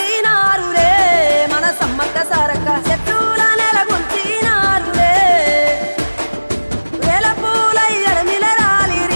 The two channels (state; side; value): inverted; both; correlation -1.00